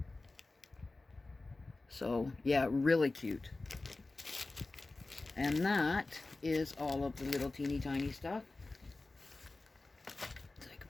So yeah, really cute. And that is all of the little teeny tiny stuff. So I can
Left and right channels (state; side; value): quieter; right; 3.3 dB